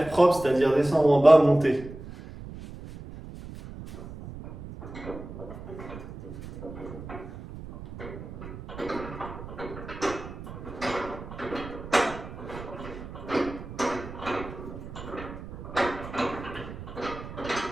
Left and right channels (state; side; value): noise; right; rumble, 12 dB below the sound